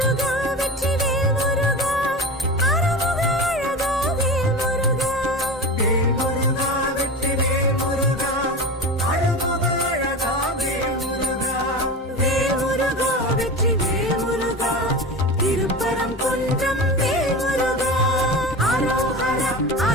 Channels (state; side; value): normal; both; correlation 0.28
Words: வெற்றி வேல்முருகா, அருமுக அழகா வேல்முருகா. வேல்முருகா வெற்றி வேல்முருகா, அழகுக அழகா வேல்முருகா. வேல்முருகா வெற்றி வேல்முருகா, திருப்பரம் குன்றம் வேல்முருகா. அரோஹர